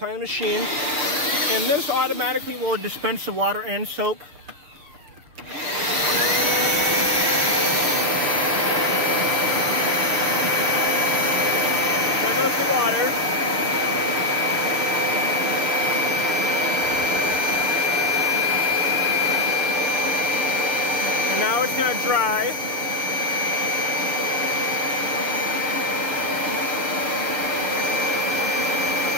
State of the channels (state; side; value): late; left; 6.7 ms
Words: the machine, and this automatically will dispense the water and soap. There goes the water. And now it's going to dry.